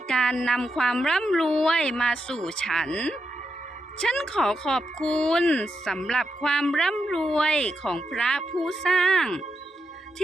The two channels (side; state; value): both; normal; correlation 0.85